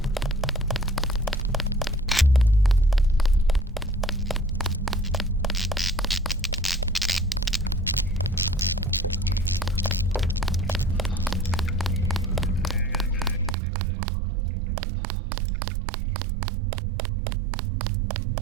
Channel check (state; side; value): drops out; left; at 13.6 s